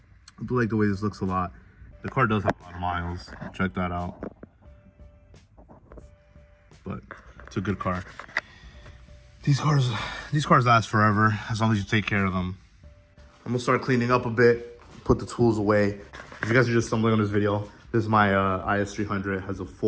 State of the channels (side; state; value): both; identical; correlation 1.00